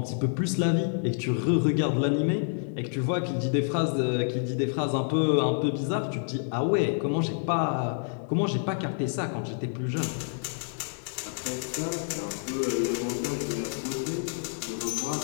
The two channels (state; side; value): silent; right; digital silence